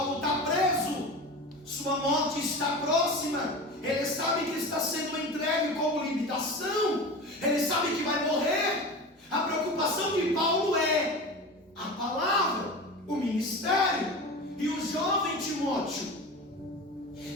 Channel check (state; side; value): normal; both; correlation 0.30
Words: está preso, sua morte está próxima, ele sabe que está sendo entregue como limitação, ele sabe que vai morrer. A preocupação de Paulo é a palavra, o ministério. E o jovem Timóteo,